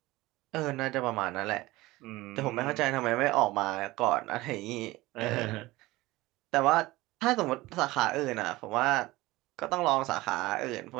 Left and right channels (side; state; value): left; quieter; 19.4 dB